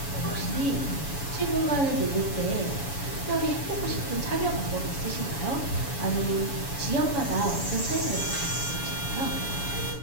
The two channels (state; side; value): late; right; 7.1 ms